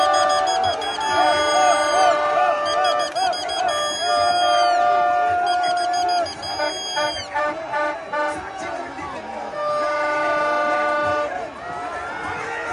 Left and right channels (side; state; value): both; identical; correlation 1.00